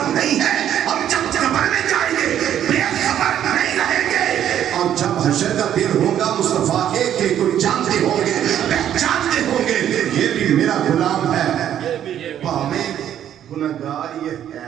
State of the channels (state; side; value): quieter; left; 10.4 dB